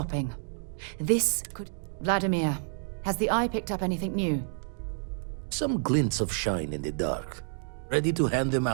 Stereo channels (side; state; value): left; silent; 58 dB below the other